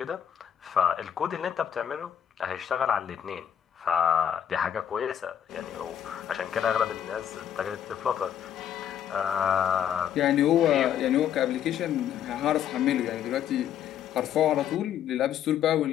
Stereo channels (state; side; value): quieter; right; 9.6 dB